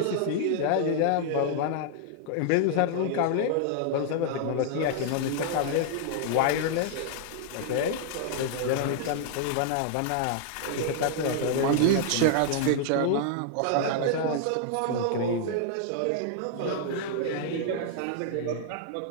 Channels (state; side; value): different; both; correlation -0.01